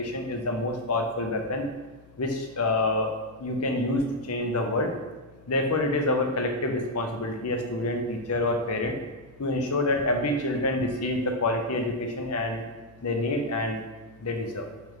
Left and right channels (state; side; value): noise; left; hum, 25 dB below the sound